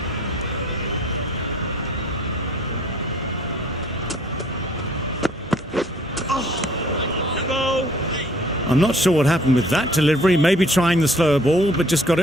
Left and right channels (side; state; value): both; normal; correlation 0.56